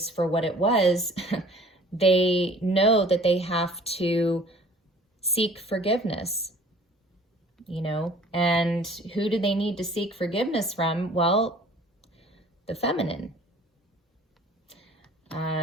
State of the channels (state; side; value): normal; both; correlation 0.50